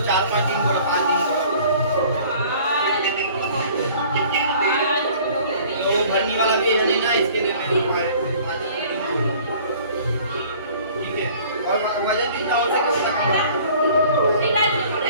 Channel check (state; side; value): inverted; both; correlation -0.51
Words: भरने वाला भी है नहीं ना, इसके लिए मेरे को ठीक है। और वजन कितना हो सके उसका कम